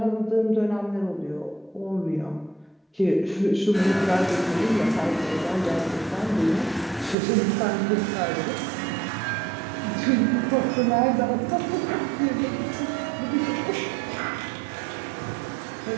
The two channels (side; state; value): left; drops out; at 7.2 s